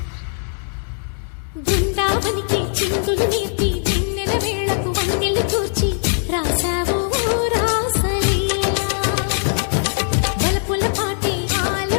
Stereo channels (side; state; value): right; silent; 64 dB below the other